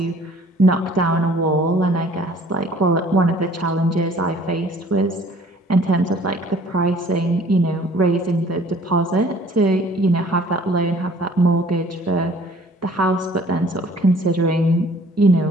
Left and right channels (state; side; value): normal; both; correlation 0.54